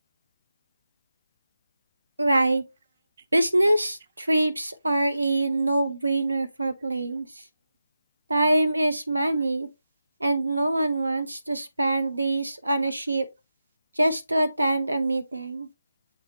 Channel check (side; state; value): both; inverted; correlation -0.90